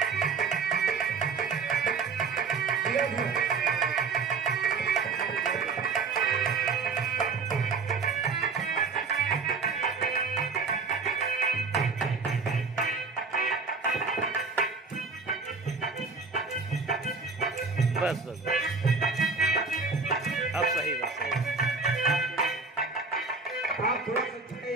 बस बस अब सही बस सही। आप थोड़ा सा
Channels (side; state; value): left; quieter; 4.7 dB